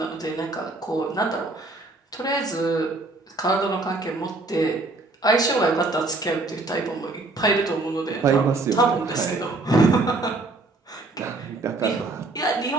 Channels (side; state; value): left; quieter; 3.2 dB